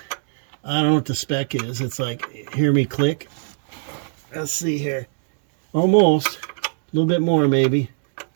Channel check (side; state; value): left; silent; digital silence